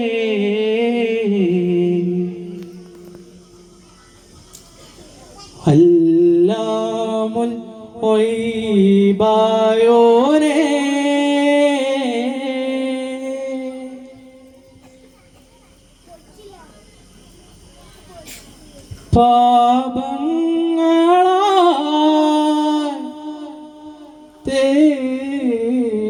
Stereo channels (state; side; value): identical; both; correlation 1.00